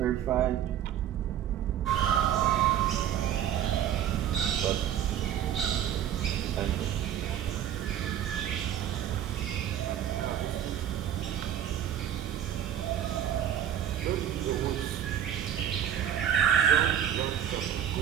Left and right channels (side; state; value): left; quieter; 10.3 dB